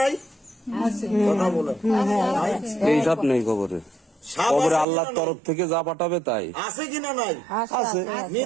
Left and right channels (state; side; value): drops out; left; at 4.9 s